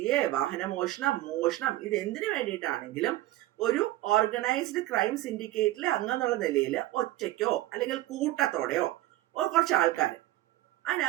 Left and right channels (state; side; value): quieter; left; 16.1 dB